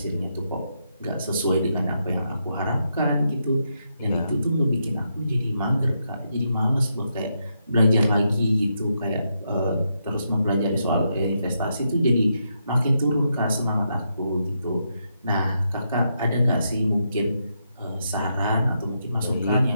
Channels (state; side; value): inverted; both; correlation -0.81